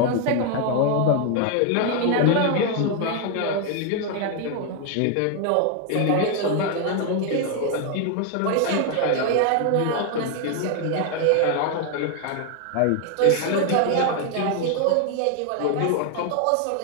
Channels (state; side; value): different; both; correlation 0.01